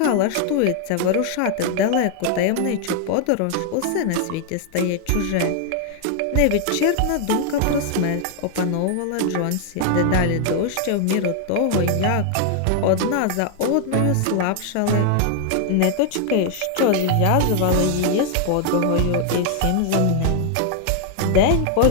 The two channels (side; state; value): both; different; correlation 0.00